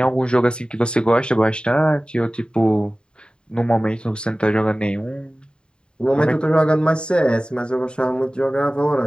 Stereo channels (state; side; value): late; right; 0.051 ms